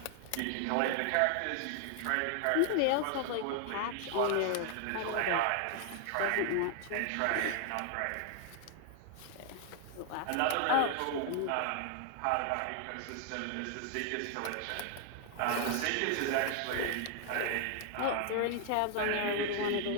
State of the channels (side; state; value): both; different; correlation 0.00